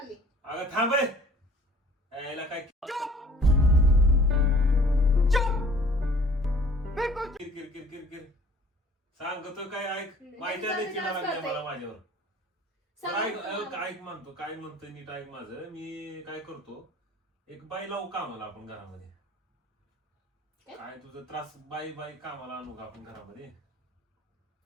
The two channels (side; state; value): both; normal; correlation 0.51